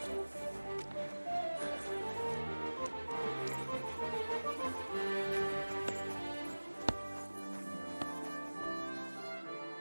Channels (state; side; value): inverted; both; correlation -1.00